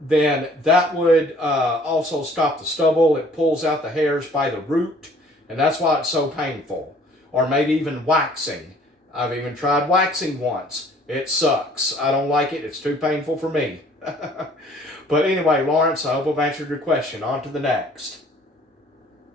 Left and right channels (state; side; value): normal; both; correlation 0.56